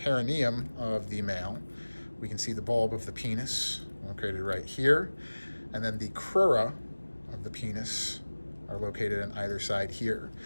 of the male, we can see the bulb of the penis located right here, and then the crura of the penis are located on either side here.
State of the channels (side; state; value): both; inverted; correlation -1.00